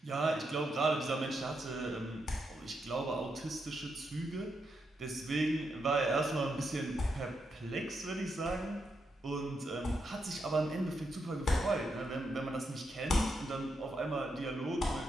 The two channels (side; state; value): both; normal; correlation 0.82